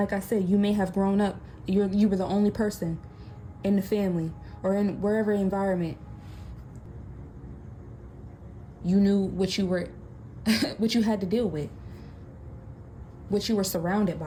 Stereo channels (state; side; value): identical; both; correlation 1.00